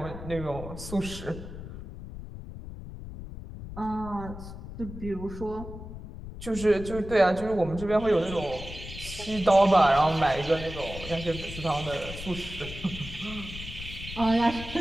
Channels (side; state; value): left; noise; rumble, 11 dB below the sound